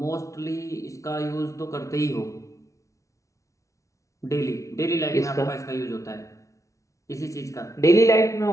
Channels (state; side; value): late; right; 0.15 ms